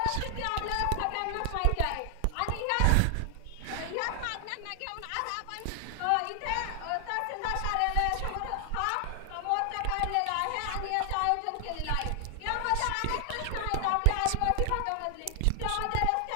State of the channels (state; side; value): different; both; correlation 0.00